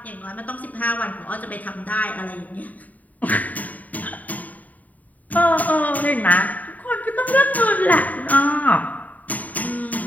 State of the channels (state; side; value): late; right; 0.075 ms